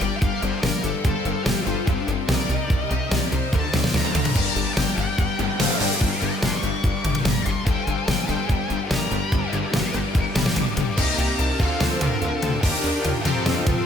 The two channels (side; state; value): both; normal; correlation 0.68